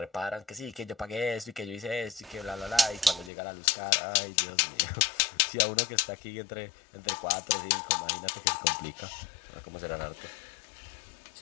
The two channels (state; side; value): drops out; right; at 3.3 s